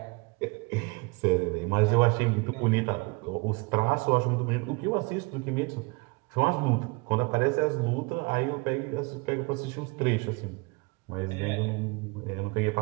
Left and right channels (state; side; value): quieter; left; 28.1 dB